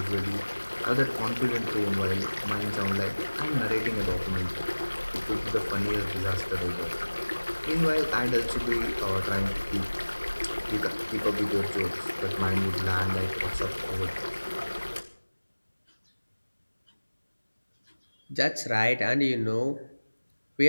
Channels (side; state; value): both; inverted; correlation -1.00